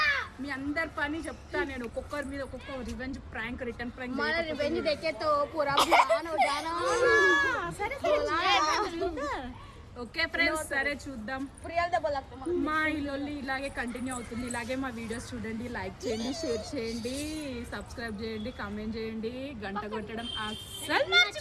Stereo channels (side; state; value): both; identical; correlation 1.00